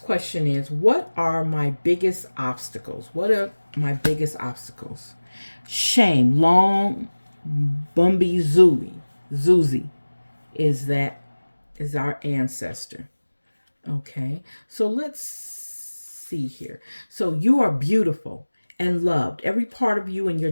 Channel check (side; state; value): both; inverted; correlation -1.00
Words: is, what are my biggest obstacles? What are my biggest obstacles? Shame. Long Bumby Zuzi is our ancestor. Okay. So let's see here. So you are beautiful and loved. Every part of you and your